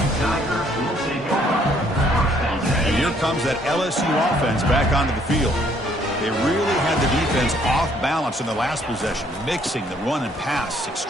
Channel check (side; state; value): both; normal; correlation 0.65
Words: And here comes that LSU offense back onto the field. They really had the defense off balance in the last possession, mixing the run and pass